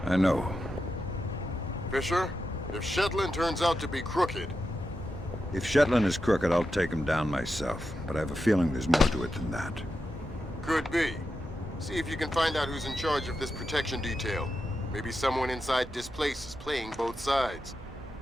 I know. Fisher, if Shetland turns out to be crooked... If Shetland is crooked, I'll take him down myself. But I have a feeling there's more to it than that. Could be. See if you can find out who's in charge of this protection detail. Maybe someone inside Displace is playing both sides.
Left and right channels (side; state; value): both; normal; correlation 0.88